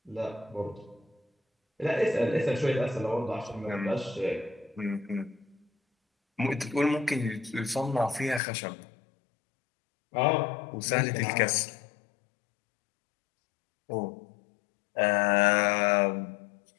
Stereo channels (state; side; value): drops out; right; at 8.4 s